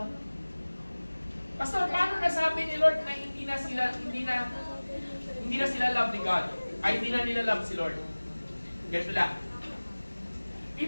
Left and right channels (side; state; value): both; inverted; correlation -1.00